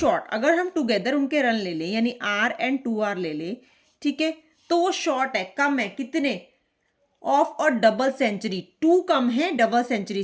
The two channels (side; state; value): both; identical; correlation 1.00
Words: अगर हम टुगेदर उनके रन ले लें यानी R एंड 2R ले लें, ठीक है, तो वो शॉर्ट है, कम है, कितने, ऑफ और डबल सेंचुरी, 2 कम है डबल सेंचुरी